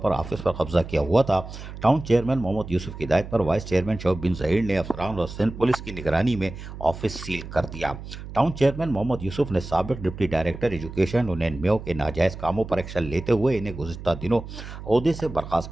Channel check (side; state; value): right; noise; hum, 11 dB below the sound